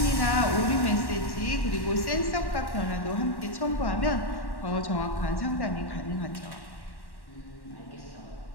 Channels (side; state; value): right; late; 1.1 ms